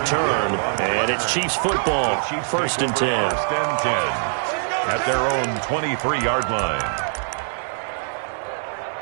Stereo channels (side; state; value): left; silent; 64 dB below the other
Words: And it's Chiefs football, 1st and 10. At their own 23-yard line.